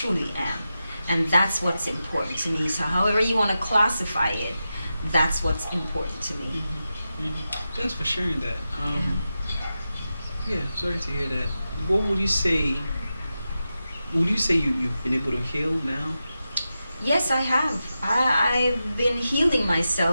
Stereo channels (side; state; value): both; inverted; correlation -0.91